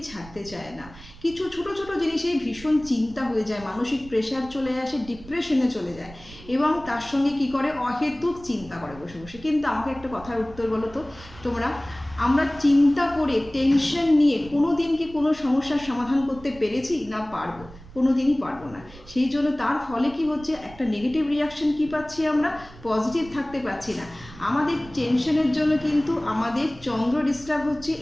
ছাড়তে চায় না। কিছু ছোট ছোট জিনিসেই ভীষণ চিন্তা হয়ে যায়, মানসিক প্রেশার চলে আসে, ডিপ্রেশনে চলে যায় এবং তার সঙ্গে কি করে অহেতুক চিন্তা করে বসে বসে। কিন্তু আমাকে একটা কথার উত্তর বলো তো তোমরা, আমরা চিন্তা করে টেনশন নিয়ে কোনো দিন কি কোনো সমস্যার সমাধান করতে পেরেছি? না পারবো, কোনো দিনই পারবো না। সেই জন্য তার ফলে কি হচ্ছে, একটা নেগেটিভ রিয়াকশন কি পাচ্ছি আমরা, পজিটিভ থাকতে পারছি না। আমাদের টেনশনের জন্য কিন্তু আমাদের চন্দ্র ডিস্টার্ব হচ্ছে।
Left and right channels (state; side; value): noise; right; rumble, 19 dB below the sound